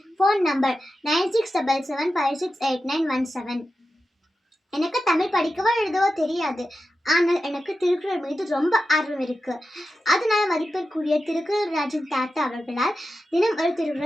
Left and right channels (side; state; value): both; normal; correlation 0.91